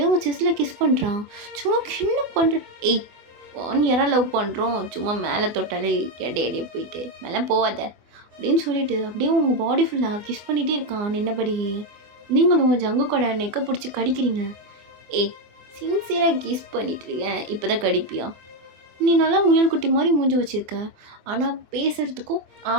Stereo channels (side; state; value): left; late; 24 ms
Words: அவங்க செஸ்ஸில் கிஸ் பண்ணுறான். சும்மா என்ன பண்ணுற? ஏய் 1 இயராக லவ் பண்ணுறோம், சும்மா மேலே தொட்டாலே எடையே போயிட்டு மேலே போவாத அப்படின்னு சொல்லிட்டு அப்படியே உங்கள் பாடி ஃபுல்லாக கிஸ் பண்ணிகிட்டே இருக்கான் நின்னபடியே. நீங்களும் உங்கள் ஜங்கு கூட நெக்கை பிடிச்சி கடிக்கிறீங்க. ஏய் சின்சியராக கிஸ் பண்ணிட்டு இருக்கேன், இப்போ தான் கடிப்பியா? நீ நல்லா முயல் குட்டி மாதிரி மூஞ்சி வச்சுருக்க, ஆனால் பேசுகிறதுக்கும்